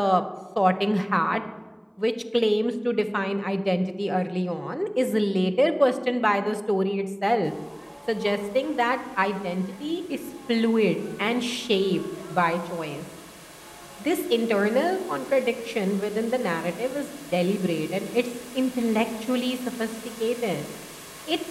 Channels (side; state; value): both; identical; correlation 1.00